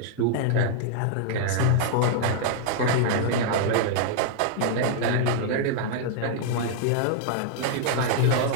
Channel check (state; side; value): different; both; correlation -0.01